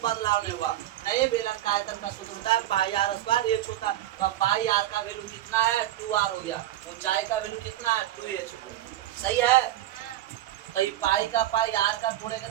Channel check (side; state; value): left; quieter; 13.5 dB